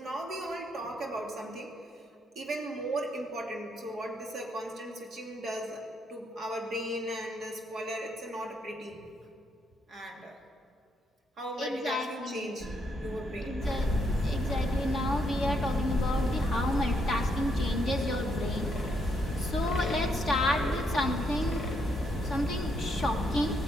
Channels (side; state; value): both; normal; correlation 0.75